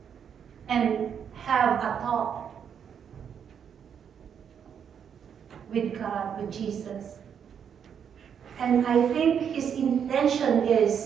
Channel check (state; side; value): quieter; left; 7.9 dB